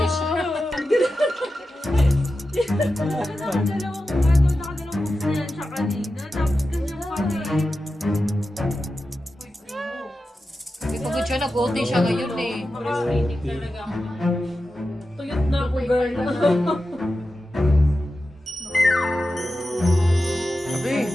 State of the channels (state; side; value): normal; both; correlation 0.92